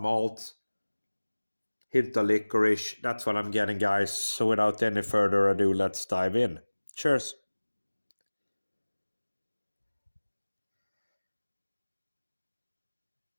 hint of licorice. That's what I'm getting, guys. So without any further ado, let's dive in. Cheers.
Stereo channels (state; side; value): inverted; both; correlation -1.00